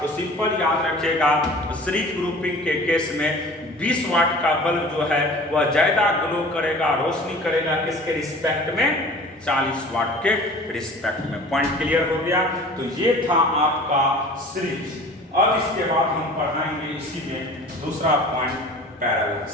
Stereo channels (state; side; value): normal; both; correlation 0.43